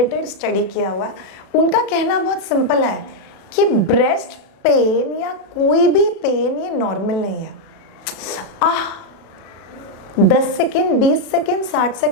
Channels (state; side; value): late; right; 36 ms